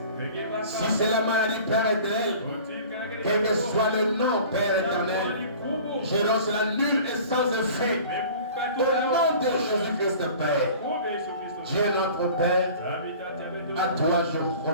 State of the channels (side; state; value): both; inverted; correlation -0.44